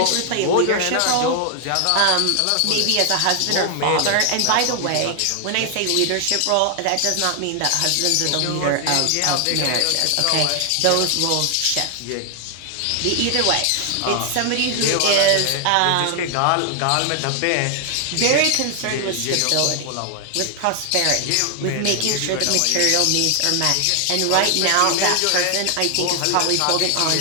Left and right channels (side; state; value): both; different; correlation 0.00